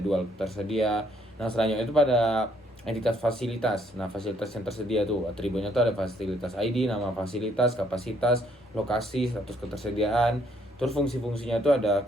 tersedia. Nah, selanjutnya itu pada entitas fasilitas. Nah, fasilitas yang tersedia tuh atributnya itu ada fasilitas ID, nama fasilitas, kapasitas, lokasi, status ketersediaan. Terus fungsi-fungsinya itu ada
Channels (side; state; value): both; normal; correlation 0.68